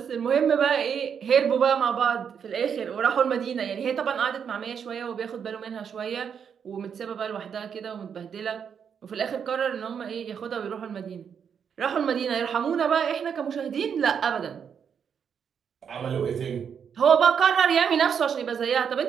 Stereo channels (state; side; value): quieter; left; 7.4 dB